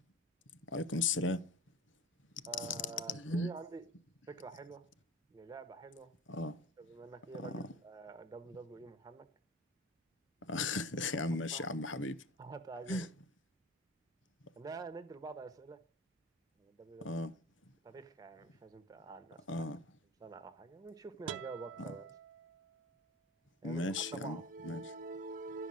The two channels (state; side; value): normal; both; correlation 0.36